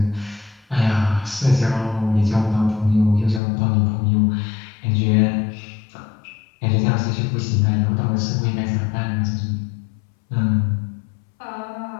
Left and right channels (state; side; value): drops out; right; at 3.4 s